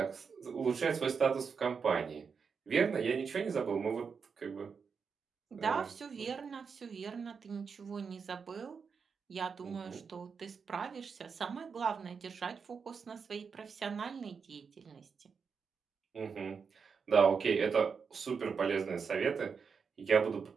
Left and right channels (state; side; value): quieter; left; 5.8 dB